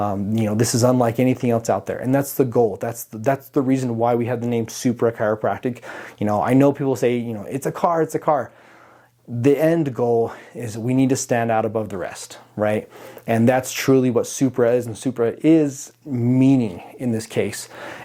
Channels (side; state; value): both; identical; correlation 1.00